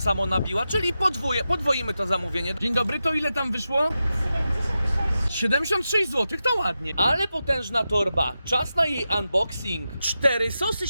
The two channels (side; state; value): both; inverted; correlation -0.91